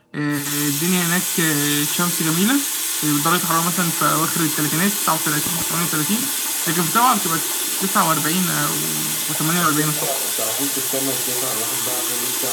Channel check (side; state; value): both; identical; correlation 1.00